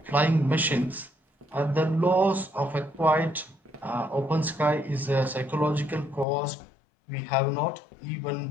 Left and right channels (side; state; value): right; drops out; at 6.2 s